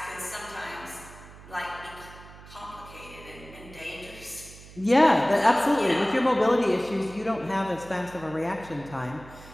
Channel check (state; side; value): noise; right; hum, 18 dB below the sound